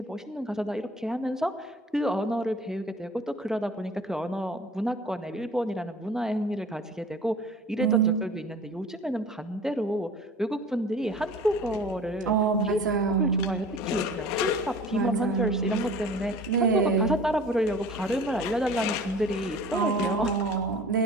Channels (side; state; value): both; normal; correlation 0.44